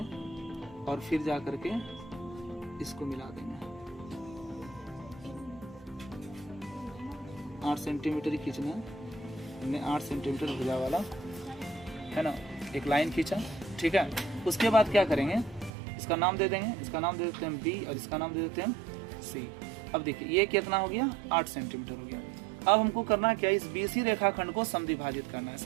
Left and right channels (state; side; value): drops out; left; at 15.7 s